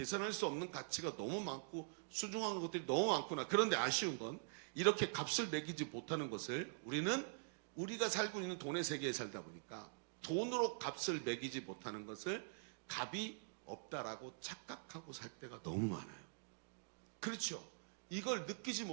수 없는 가치가 너무 많고 소중한 것들이 너무 많구나. 그런데 아쉬운 건 이렇게 값을 매기지 못하는 것을 우리는 우리가 살고 있는 돈의 세계에 살다 보니까 돈으로 값을 매기지 못하는 것을 값이 없다라고 착각하고 살 때가 너무 많아요. 그렇죠. 이걸 느끼지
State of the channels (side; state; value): left; silent; digital silence